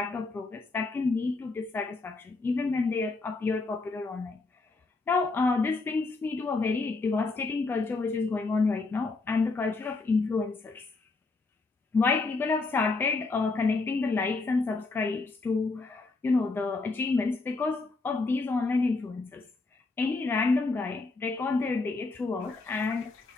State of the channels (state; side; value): quieter; right; 3.7 dB